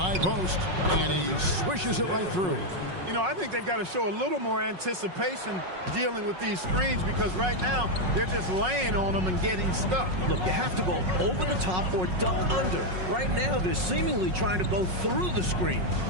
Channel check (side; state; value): left; late; 5.4 ms